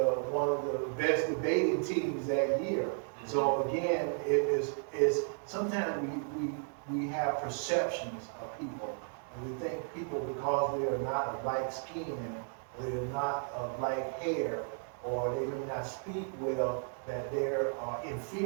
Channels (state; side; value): silent; left; 55 dB below the other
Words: one of the best debating teams that year. Mm-hmm. So again, it's sometimes we have perceptions of people, and we think people, because they're not of like skin, they're not of like hair, or they may not speak well, that they're